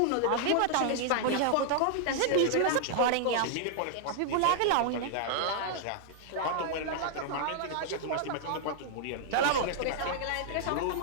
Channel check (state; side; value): different; both; correlation -0.01